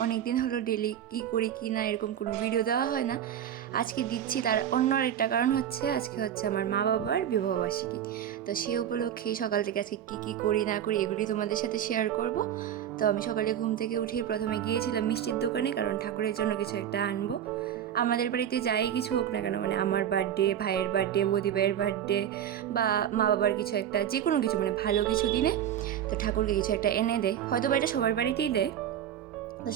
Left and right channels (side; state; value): left; quieter; 10.0 dB